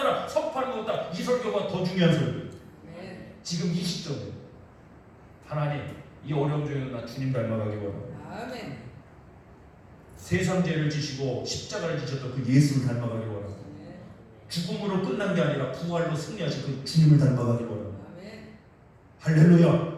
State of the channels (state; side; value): identical; both; correlation 1.00